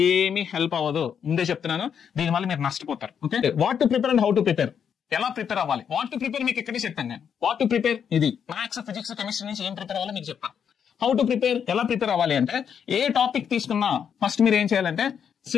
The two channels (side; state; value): right; quieter; 7.7 dB